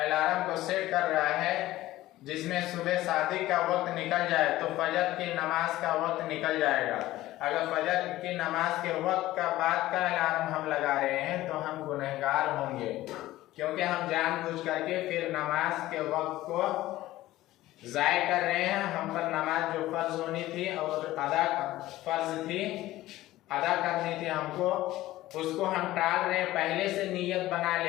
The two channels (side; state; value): right; quieter; 16.1 dB